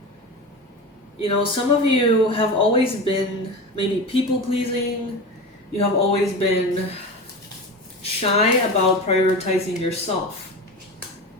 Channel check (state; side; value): normal; both; correlation 0.27